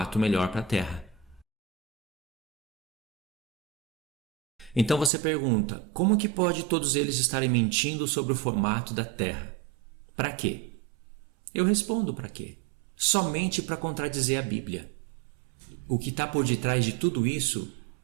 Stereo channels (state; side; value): drops out; left; at 5.1 s